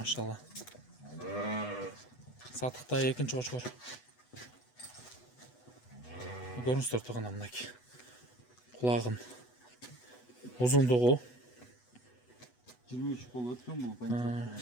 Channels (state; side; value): late; right; 8.1 ms